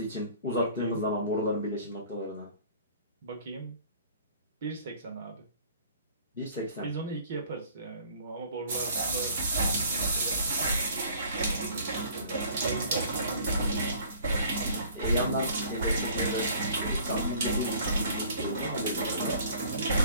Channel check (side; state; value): both; inverted; correlation -0.52